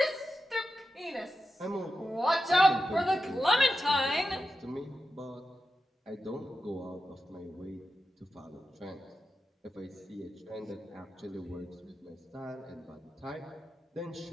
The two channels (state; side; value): normal; both; correlation 0.90